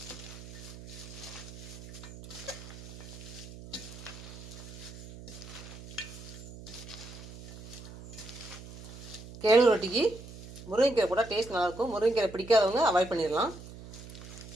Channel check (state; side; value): noise; right; hum, 14 dB below the sound